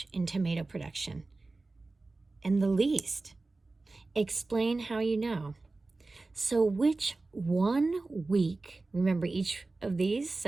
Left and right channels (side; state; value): left; quieter; 3.4 dB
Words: in tomato production and the least? Explain how you know. So which 1 week, remember each of these,